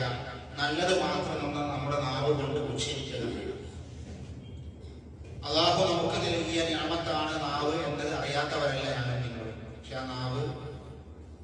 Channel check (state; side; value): identical; both; correlation 1.00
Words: നല്ലത് മാത്രം നമ്മുടെ നാവ് കൊണ്ട് ഉച്ചരിക്കുക. അല്ലാഹു നമുക്ക് നൽകിയ നിഅമത്താണ് നാവ് എന്നത് അറിയാത്തവരല്ല ഞങ്ങൾ നിങ്ങൾ. പക്ഷെ ആ നാവ്